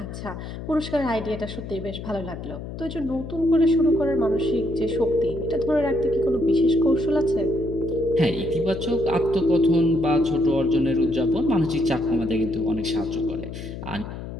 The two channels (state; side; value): noise; left; hum, 9 dB below the sound